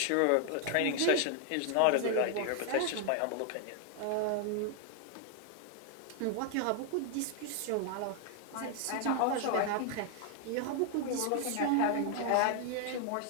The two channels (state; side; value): different; both; correlation 0.00